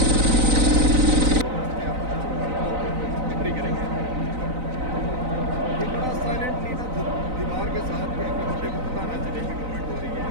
दीवार के साथ क्या बंदे को पता ना चले कि कमेंट हो रही है।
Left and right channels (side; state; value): left; late; 3.9 ms